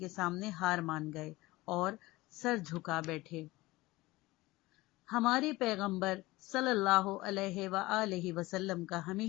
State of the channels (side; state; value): right; quieter; 20.0 dB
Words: سامنے ہار مان گئے اور سر جھکا بیٹھے۔ ہمارے پیغمبر صلی اللہ علیہ وآلہ وسلم کا